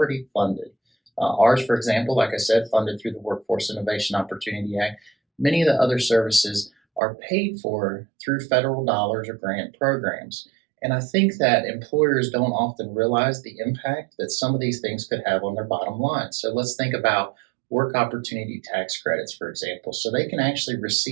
funded. Ours, for example, like I said, funded through the Workforce Innovation Opportunity Act. Many of the other services are paid for through federal dollars or grant programs. And I think that employers don't often realize the impact that some of these things could have on their bottom line. So let's think about work opportunity tax credits, for example. So they can actually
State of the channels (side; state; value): left; drops out; at 7.0 s